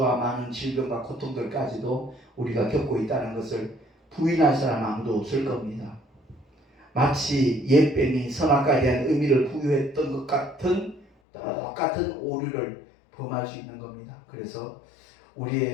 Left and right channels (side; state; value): right; drops out; at 11.1 s